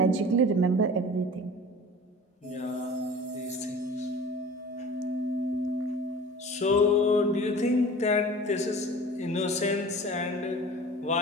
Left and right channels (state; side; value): normal; both; correlation 0.41